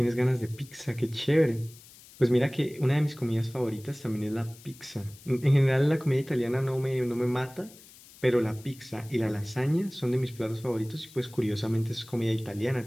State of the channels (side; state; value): left; noise; hiss, 22 dB below the sound